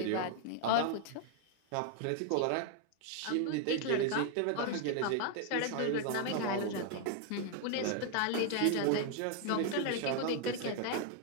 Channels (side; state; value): both; different; correlation 0.00